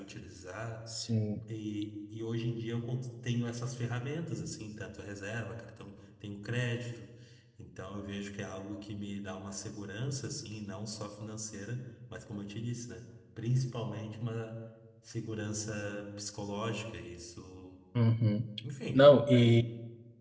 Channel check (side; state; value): both; identical; correlation 1.00